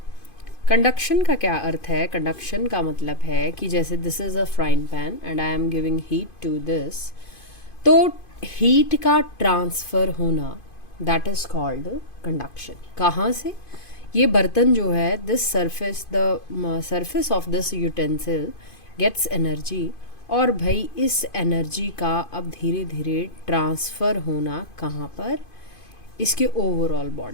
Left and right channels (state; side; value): late; right; 2.5 ms